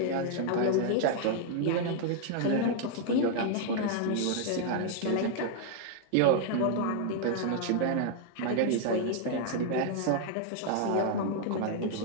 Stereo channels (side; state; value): both; different; correlation 0.00